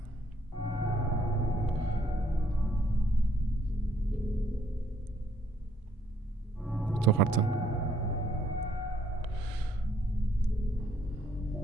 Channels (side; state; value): both; normal; correlation 0.69